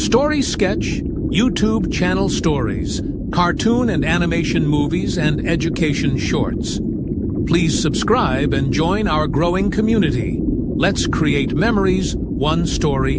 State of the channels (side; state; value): both; identical; correlation 1.00